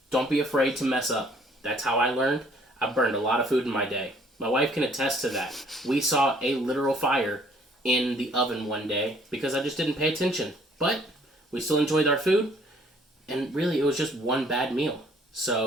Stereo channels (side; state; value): both; normal; correlation 0.60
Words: Don't be afraid to mess up. That's how I learned. I burned a lot of food in my day. My wife can attest to that. We saw a literal fire in the oven one day because I just didn't pay attention. But we still enjoyed our food, and really it was just one bad meal.